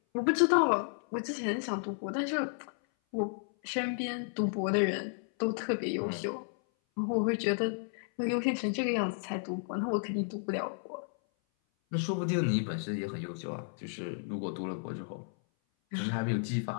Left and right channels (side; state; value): right; silent; 56 dB below the other